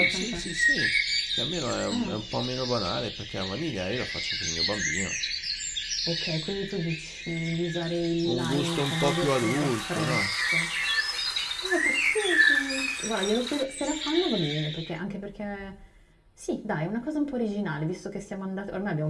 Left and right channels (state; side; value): identical; both; correlation 1.00